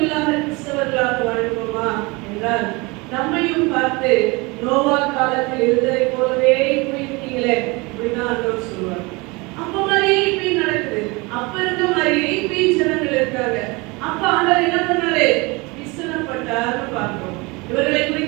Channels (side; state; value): left; quieter; 25.8 dB